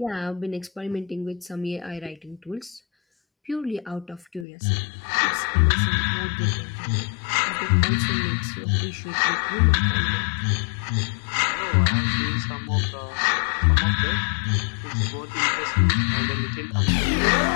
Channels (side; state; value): right; drops out; at 4.5 s